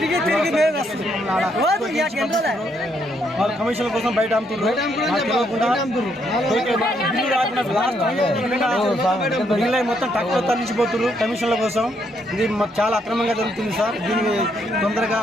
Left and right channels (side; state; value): both; normal; correlation 0.74